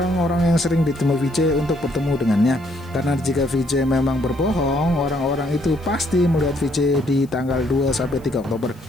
yang sering ditemui VJ untuk bertemu dengannya. Karena jika VJ memang berbohong, orang-orang itu pasti melihat VJ di tanggal 2-3 Oktober.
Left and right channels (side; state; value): left; noise; hiss, 30 dB below the sound